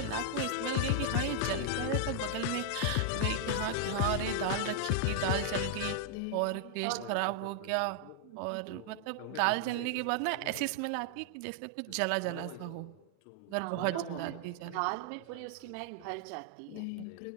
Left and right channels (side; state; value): both; different; correlation -0.01